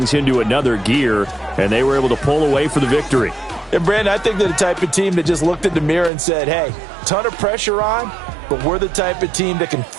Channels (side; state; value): left; drops out; at 6.1 s